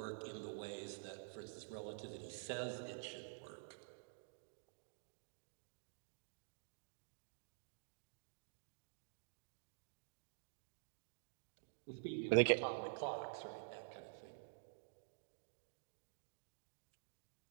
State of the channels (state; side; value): silent; left; digital silence